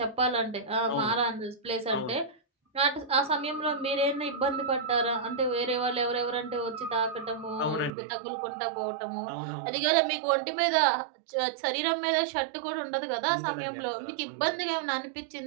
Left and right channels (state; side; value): drops out; left; at 7.9 s